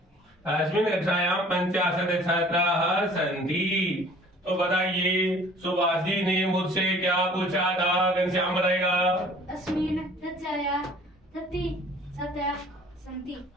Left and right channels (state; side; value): normal; both; correlation 0.51